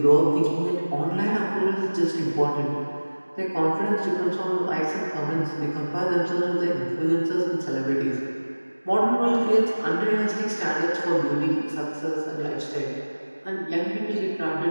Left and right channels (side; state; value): both; inverted; correlation -1.00